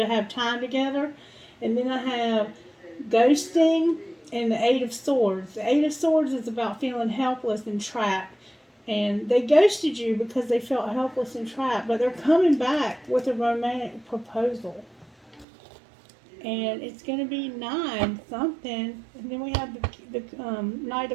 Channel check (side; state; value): left; drops out; at 15.5 s